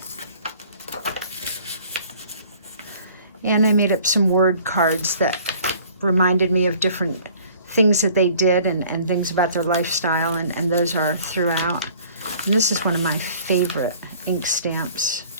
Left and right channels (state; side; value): inverted; both; correlation -0.53